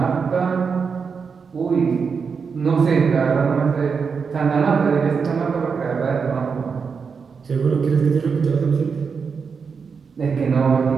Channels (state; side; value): quieter; left; 5.7 dB